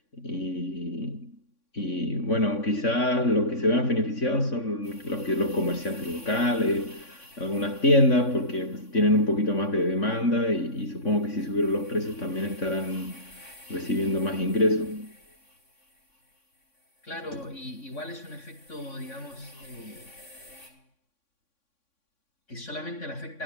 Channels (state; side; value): late; right; 3.6 ms